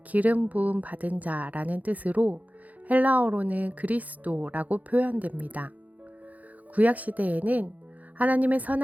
기름 부음 받은 자라는 뜻으로 헬라어로는 그리스도라고 표현됩니다. 구약시대에는 하나님의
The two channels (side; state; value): left; late; 0.077 ms